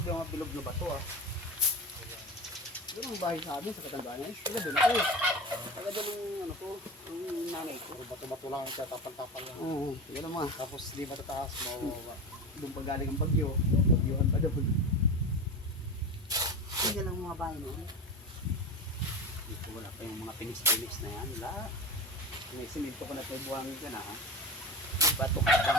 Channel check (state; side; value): normal; both; correlation 0.26